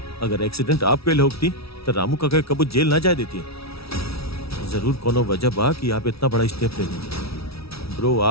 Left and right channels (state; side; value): late; right; 0.76 ms